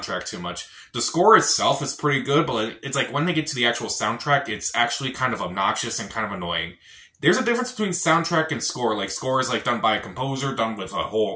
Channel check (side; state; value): both; identical; correlation 1.00